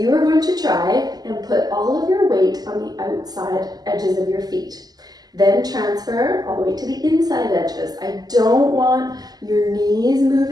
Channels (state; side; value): late; left; 0.19 ms